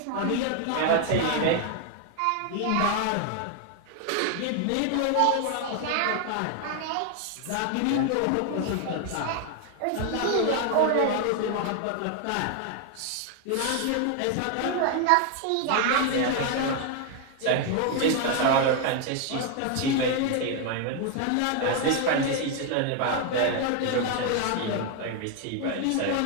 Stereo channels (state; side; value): different; both; correlation 0.01